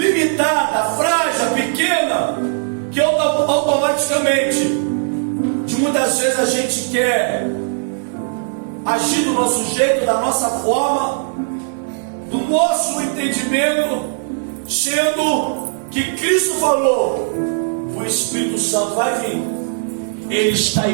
frágil, pequena, que automaticamente, de muitas vezes a gente quer agir do nosso jeito, da nossa forma, do nosso entendimento, sendo que Cristo falou, o Espírito Santo vai vir, Ele está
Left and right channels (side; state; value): left; silent; 58 dB below the other